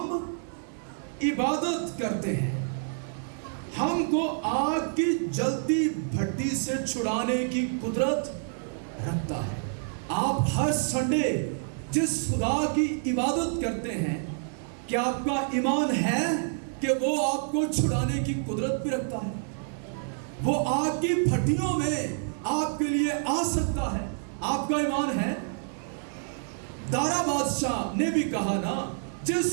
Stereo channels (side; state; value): left; silent; 56 dB below the other